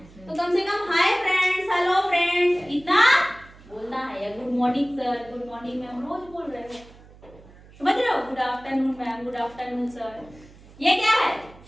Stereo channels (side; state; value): right; noise; hum, 23 dB below the sound